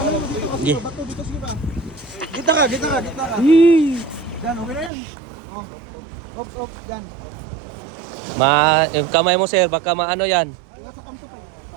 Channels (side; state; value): left; drops out; at 4.9 s